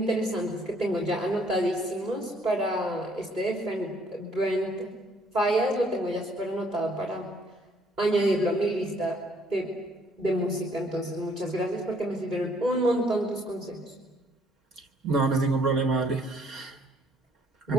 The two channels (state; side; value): normal; both; correlation 0.64